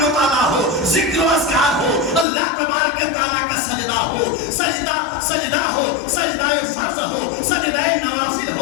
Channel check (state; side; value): drops out; right; at 2.2 s